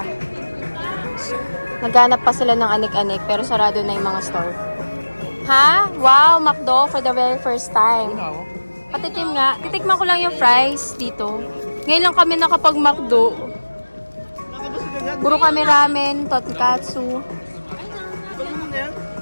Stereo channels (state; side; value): inverted; both; correlation -1.00